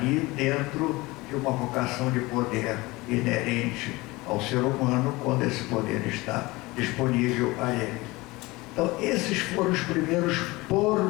dentro de uma vocação de poder inerente ao ser humano quando esse poder está disponível a ele. Então, esses foram os primeiros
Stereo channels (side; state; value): right; quieter; 21.8 dB